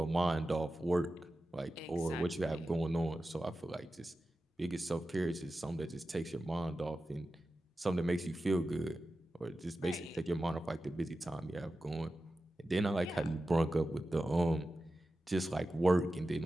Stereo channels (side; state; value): both; normal; correlation 0.93